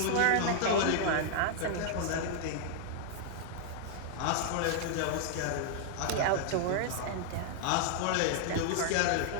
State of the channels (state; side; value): different; both; correlation 0.00